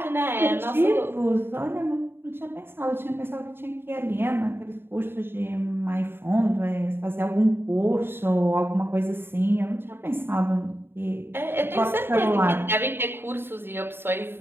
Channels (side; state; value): left; late; 0.11 ms